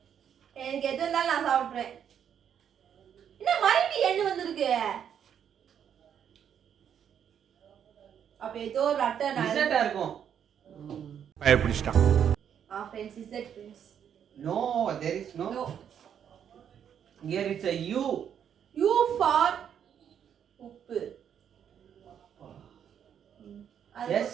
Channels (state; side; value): quieter; left; 8.7 dB